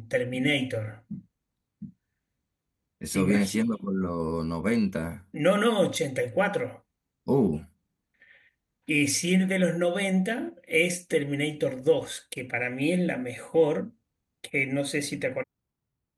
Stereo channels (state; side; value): identical; both; correlation 1.00